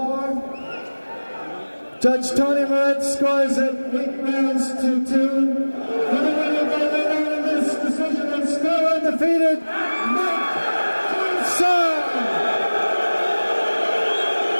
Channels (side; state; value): both; inverted; correlation -1.00